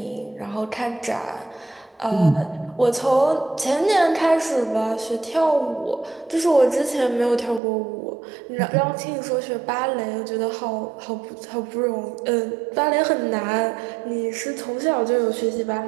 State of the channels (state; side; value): drops out; left; at 7.6 s